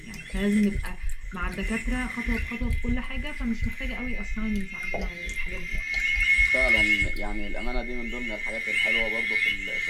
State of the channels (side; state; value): both; identical; correlation 1.00